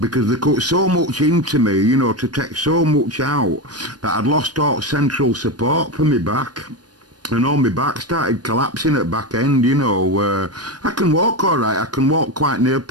they cut so much into me, you know, to take so much out that I'd lost all central support for me back. And all my back started collapsing at back end, you know. I can walk all right. I can walk quite near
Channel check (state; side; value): late; left; 0.69 ms